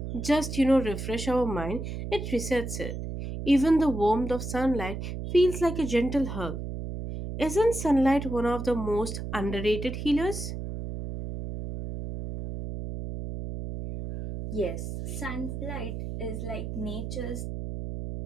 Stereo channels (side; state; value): right; noise; hum, 6 dB below the sound